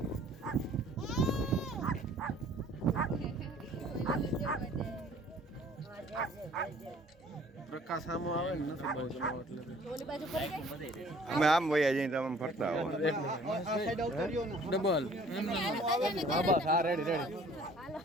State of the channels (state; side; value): normal; both; correlation 0.54